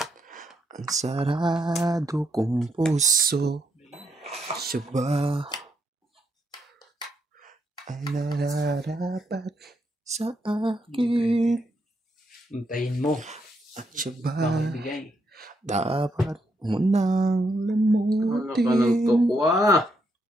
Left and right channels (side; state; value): both; normal; correlation 0.78